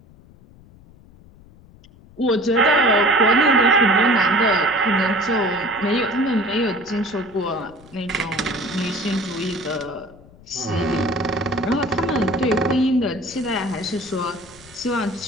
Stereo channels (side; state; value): left; noise; rumble, 24 dB below the sound